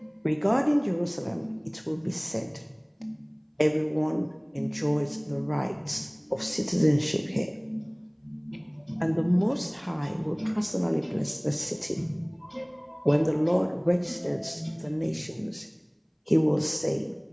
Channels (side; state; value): both; identical; correlation 1.00